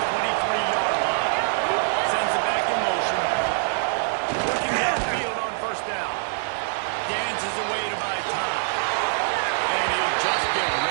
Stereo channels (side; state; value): left; silent; digital silence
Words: 23-yard line. Sends it back in motion. Looking downfield on first down. Dances away to buy time. And he'll just get